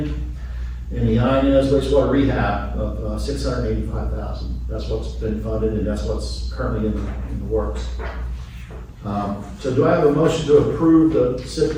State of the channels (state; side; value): identical; both; correlation 1.00